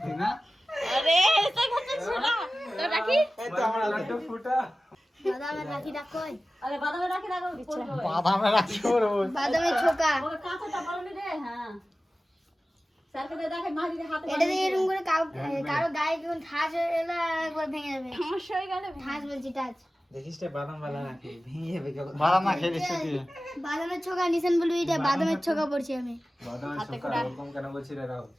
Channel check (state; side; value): normal; both; correlation 0.96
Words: না? আরে এসে গেছে ছোড়া। তো রাখি এই তো আমার লাড্ডু ফুটা। বাদামের রাখিটা কই? আরে বাদামের রাখি রাখো পড়বে। বাদামে রাখি ওর ওই। বাদামের ছোকা। ওকে কাঁচাটা বলনি রে। হ্যাঁ স্যারকে দে, দেখে মা যদি হাতে এটা দিয়ে এরকম করে কারো গায়ে যখন ঠাস হয়ে এলো একবার ভেঙে যাবে। সমস্যা হয়ে গেলে ঠাস বলছি টাচ। দেখিস রে বাদাম বালা রাখি ভেঙে যাবে কেমন। বাদাম না খেয়ে দিচ্ছি তুই। বাদামের ছোকা নিছেন বলবি, এটা বাদামের ছোকা পড়ছি আমি। হাতে করে